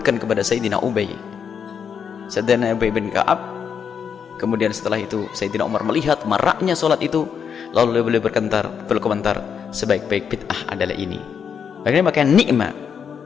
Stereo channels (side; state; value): right; quieter; 7.2 dB